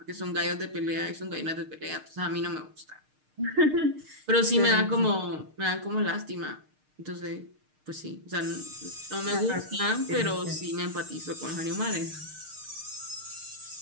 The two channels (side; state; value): left; late; 6.6 ms